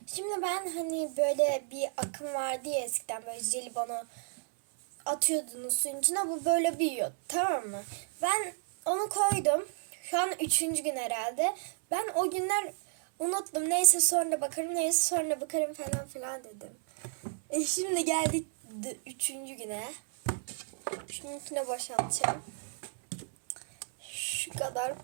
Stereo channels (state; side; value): silent; left; 56 dB below the other